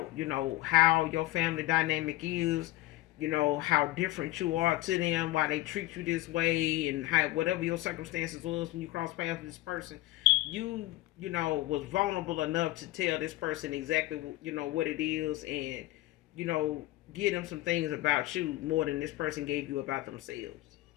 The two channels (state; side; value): quieter; right; 17.4 dB